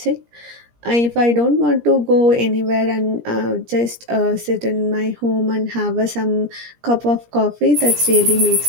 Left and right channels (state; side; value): late; left; 17 ms